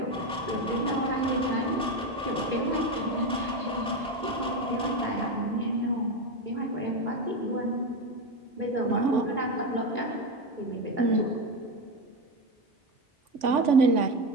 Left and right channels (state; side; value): normal; both; correlation 0.15